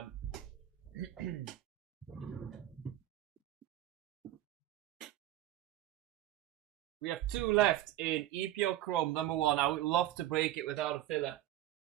We have two left in EeeeeeePL Chrome number 1. I would love to break it without a filler.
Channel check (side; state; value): left; quieter; 14.0 dB